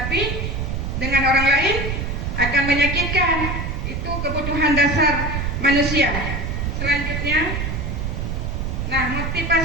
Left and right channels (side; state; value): right; noise; rumble, 2 dB below the sound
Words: dengan orang lain akan menyakitkan. Itu kebutuhan dasar manusia. Selanjutnya, nah,